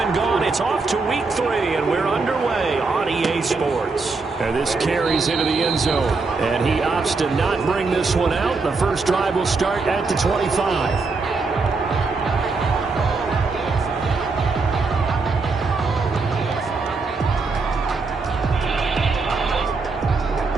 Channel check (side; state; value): left; quieter; 4.1 dB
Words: gone. It's off to week 3, and we're underway on EA Sports. And this carries into the end zone, and he opts to not bring this one out. The first drive will start at the 25.